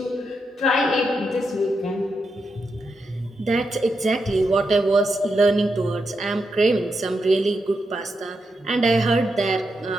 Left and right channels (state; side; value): normal; both; correlation 0.84